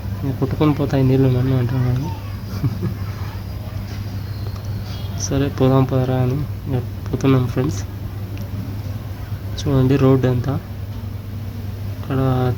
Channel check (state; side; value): identical; both; correlation 1.00